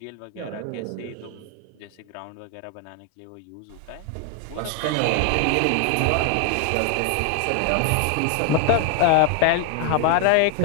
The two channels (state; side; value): different; both; correlation 0.00